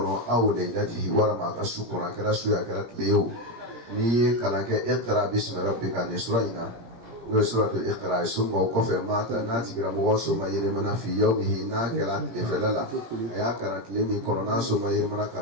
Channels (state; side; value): late; left; 17 ms